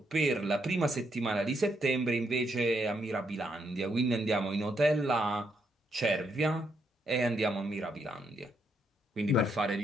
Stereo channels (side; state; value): both; normal; correlation 0.77